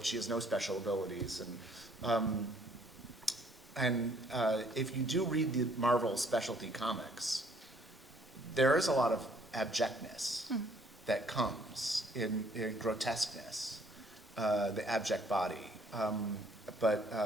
she has no special abilities. And if you do read the Marvel specialty comics, there is a lot of abjectness that comes in grotesqueness, the abject body, but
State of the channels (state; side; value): normal; both; correlation 0.62